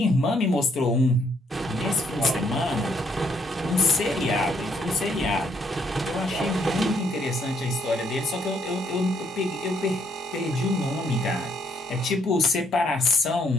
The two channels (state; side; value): normal; both; correlation 0.70